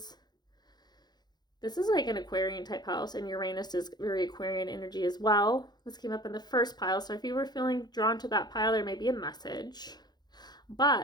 This is like an Aquarian type house, and Uranus is very Aquarian energy as well. This came up in the first pile, so if you were feeling drawn to that pile, there may be a message.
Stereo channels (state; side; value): late; right; 0.20 ms